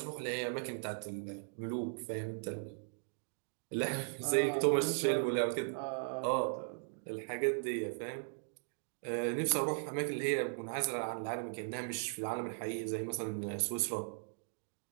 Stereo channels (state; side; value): silent; left; digital silence